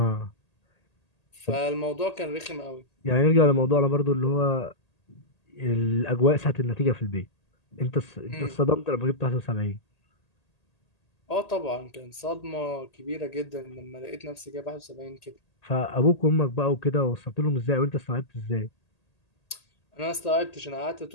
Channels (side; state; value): right; late; 1.8 ms